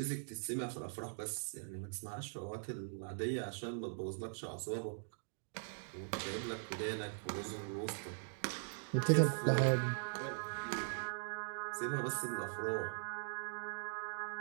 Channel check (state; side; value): silent; left; digital silence